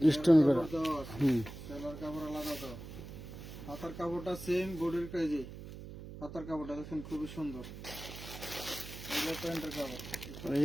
স্টোন করে। সেলার কাপড় আলাদা দাও, হাতার কাপড়টা সেম বডির কাজে, হাতার কাপড়টা দেখুন খুবই সুন্দর। এগুলো প্যান্টের কাপড়,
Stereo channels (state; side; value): noise; right; hum, 12 dB below the sound